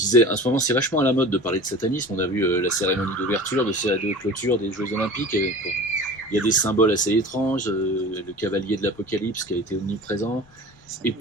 en ce moment, c'est vachement à la mode de parler de satanisme. On a vu la cérémonie d'ouverture, de clôture des Jeux Olympiques. Il y a des symboles assez étranges, le cavalier de l'Apocalypse qui a été omniprésent. Et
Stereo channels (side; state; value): left; noise; rumble, 29 dB below the sound